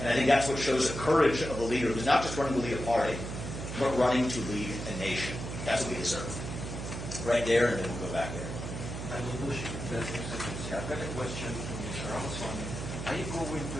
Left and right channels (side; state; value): right; noise; hum, 6 dB below the sound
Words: And I think that's what shows the courage of a leader who's not just running to lead a party, but running to lead a nation. That's what we deserve. Right there, and then we'll go back there. I will push it. I've got a question to Mr. Ramaswamy. Are you going